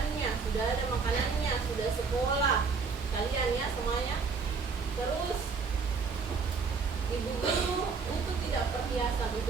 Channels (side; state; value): left; quieter; 5.0 dB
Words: sudah ada makanannya, sudah sekolah, kalian ya semuanya. Terus ibu guru untuk tidak perhiasan